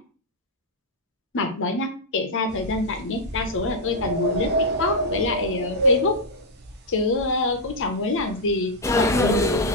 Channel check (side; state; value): both; normal; correlation -0.04